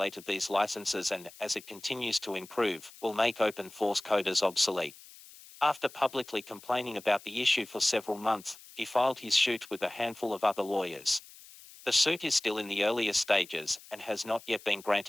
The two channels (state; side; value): noise; left; hiss, 20 dB below the sound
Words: these licenses and, as it continues to improve, will make open source coders obsolete. After publicly complaining about the issue for several months, he filed his suit with a handful of other lawyers. The suit is still in the earliest stages and has not yet been